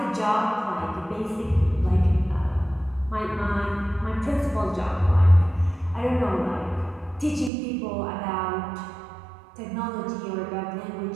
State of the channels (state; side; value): drops out; left; at 7.5 s